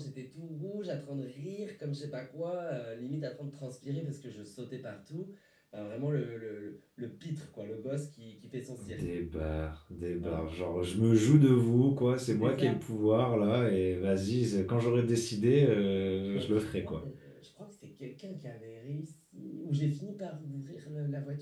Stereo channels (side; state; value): both; identical; correlation 1.00